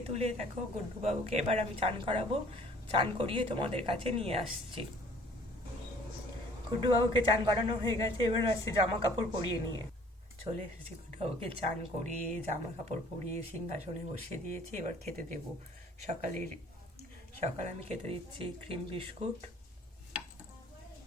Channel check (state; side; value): normal; both; correlation 0.54